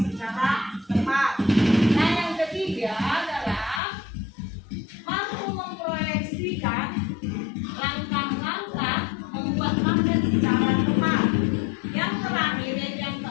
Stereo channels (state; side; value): drops out; right; at 3.8 s